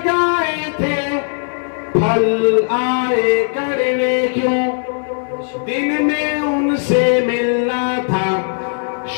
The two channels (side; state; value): right; silent; digital silence